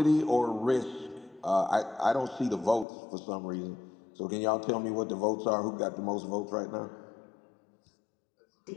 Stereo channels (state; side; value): drops out; right; at 2.9 s